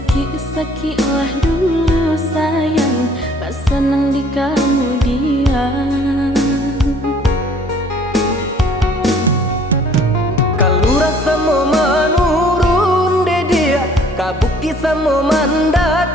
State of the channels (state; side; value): normal; both; correlation 0.56